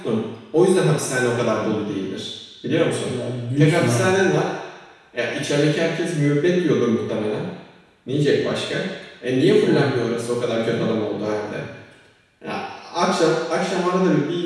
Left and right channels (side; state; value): both; identical; correlation 1.00